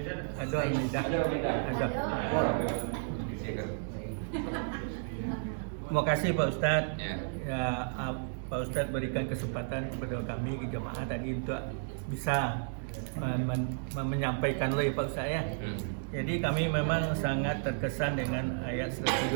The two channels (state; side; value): silent; left; digital silence